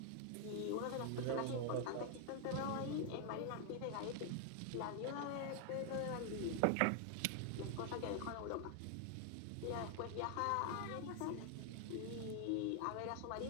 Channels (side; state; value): both; different; correlation 0.00